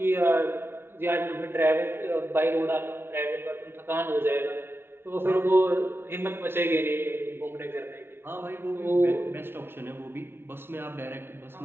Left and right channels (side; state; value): left; late; 0.11 ms